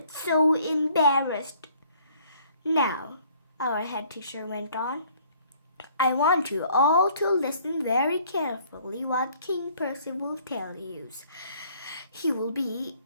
so embarrassed. Now, our head teacher went on, I want you all to listen very carefully what King Percival tells you. He will be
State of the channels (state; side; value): inverted; both; correlation -0.60